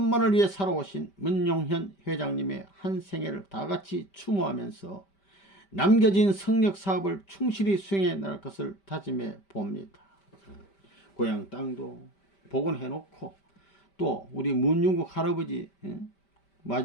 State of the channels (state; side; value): late; right; 5.1 ms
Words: 위해 살아오신 문용현 회장님의 한 생애를 다같이 추모하면서 남겨진 성역 사업을 충실히 수행해 나갈 것을 다짐해 봅니다. 고향 땅도 복원해 놓고 또 우리 문중국 할아버지